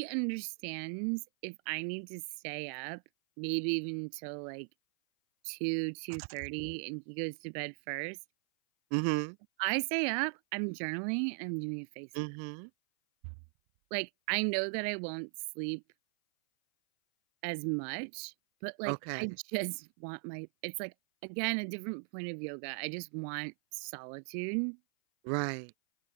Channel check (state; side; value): silent; left; 52 dB below the other